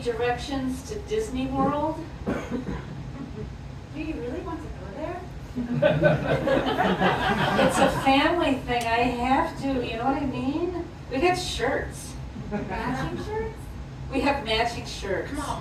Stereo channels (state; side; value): identical; both; correlation 1.00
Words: directions to Disney World. Do you really want to go there? It's a family thing. I have to, you know what I mean? We got shirts. Matching shirts? We have matching shirts. Come on,